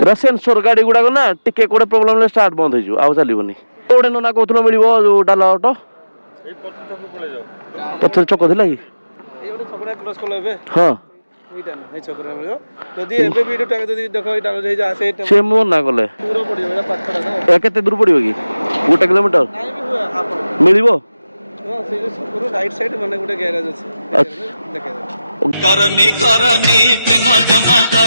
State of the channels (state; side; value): inverted; both; correlation -0.95